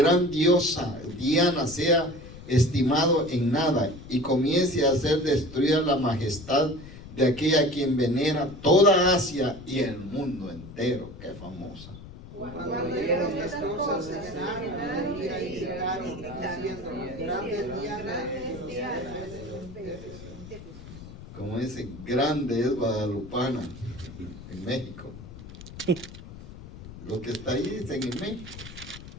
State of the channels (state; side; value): noise; left; rumble, 15 dB below the sound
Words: diosa Diana sea estimado en nada y comience a ser destruida la majestad de aquella a quien venera toda Asia y el mundo entero. Qué famosa. Cuando oyeron estas cosas se llenaron de ira y gritaron, diciendo: grande es Diana de los Efesios. Como dice, grande es Guadalupana en México. Lo que está ahí dicen en México.